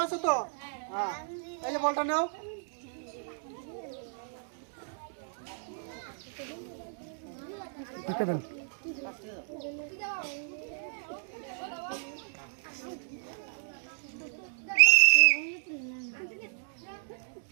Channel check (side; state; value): left; silent; digital silence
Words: আছো তো? হ্যাঁ, এই যে বলটা নাও।